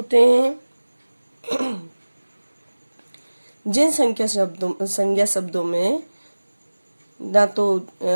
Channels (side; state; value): both; inverted; correlation -1.00